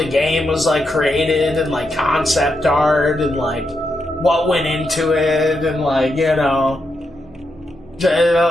game was like created and like concept art and like what went into it and like, you know,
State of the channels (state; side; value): noise; left; hum, 26 dB below the sound